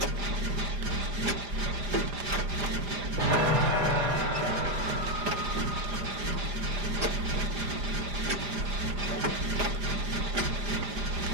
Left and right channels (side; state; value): left; late; 5.0 ms